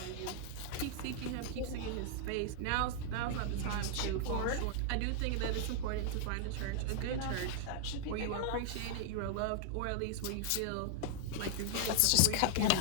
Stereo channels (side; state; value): both; different; correlation -0.01